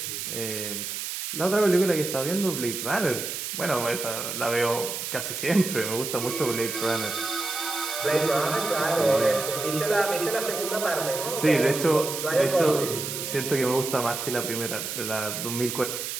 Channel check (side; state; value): right; noise; hiss, 5 dB below the sound